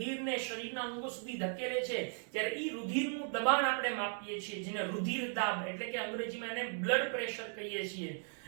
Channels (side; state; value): left; silent; 53 dB below the other